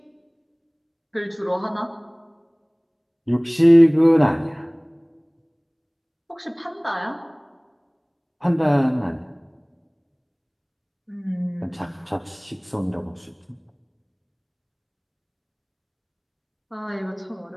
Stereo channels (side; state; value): both; identical; correlation 1.00